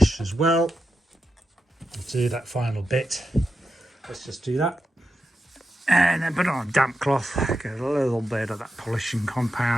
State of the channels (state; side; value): normal; both; correlation 0.88